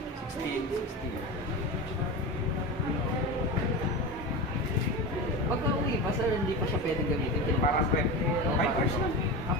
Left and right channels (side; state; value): both; normal; correlation 0.24